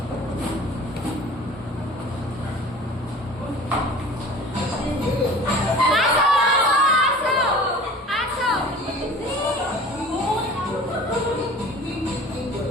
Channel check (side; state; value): both; normal; correlation 0.43